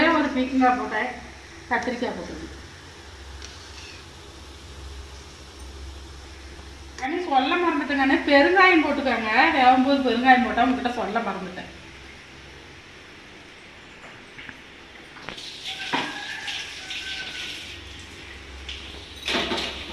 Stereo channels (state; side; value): identical; both; correlation 1.00